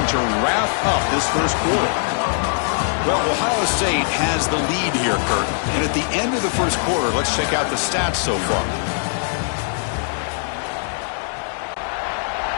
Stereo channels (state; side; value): silent; right; digital silence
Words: to wrap up this first quarter. Well, Ohio State has the lead here, Kurt. And at the end of the first quarter, let's check out the stats so far.